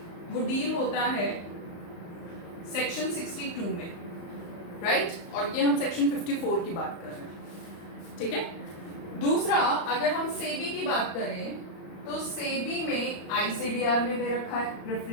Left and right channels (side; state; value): right; late; 35 ms